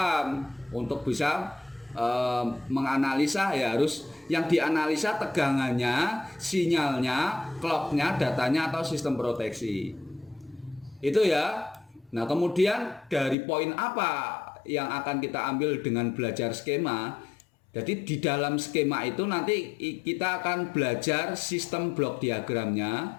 untuk bisa menganalisa ya, harus yang dianalisa tegangannya, sinyalnya, clocknya, datanya atau sistem proteksi. Itu ya. Nah kemudian dari poin apa yang akan kita ambil dengan belajar skema? Jadi di dalam skema itu nanti kita akan belajar sistem blok diagramnya,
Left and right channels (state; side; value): drops out; right; at 13.4 s